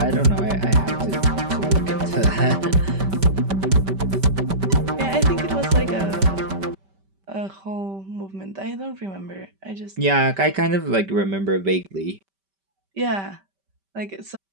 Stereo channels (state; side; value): late; left; 5.2 ms